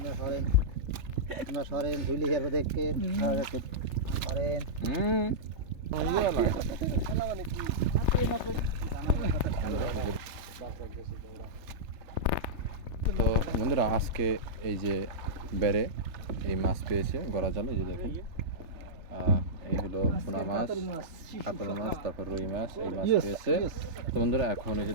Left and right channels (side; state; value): left; late; 3.3 ms